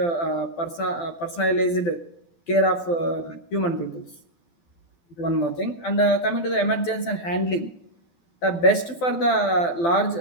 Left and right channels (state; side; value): late; right; 12 ms